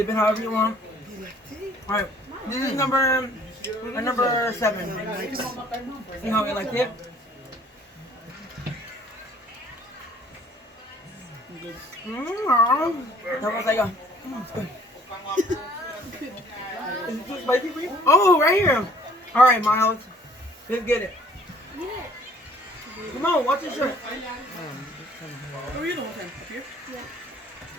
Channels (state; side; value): normal; both; correlation 0.56